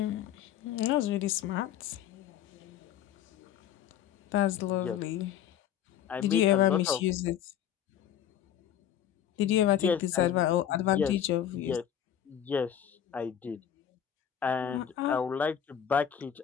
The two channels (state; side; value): quieter; right; 9.8 dB